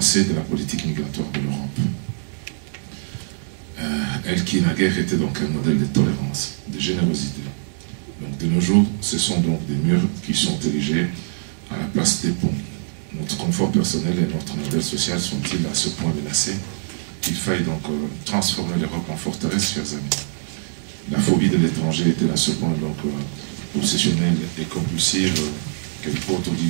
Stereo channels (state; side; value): silent; left; 64 dB below the other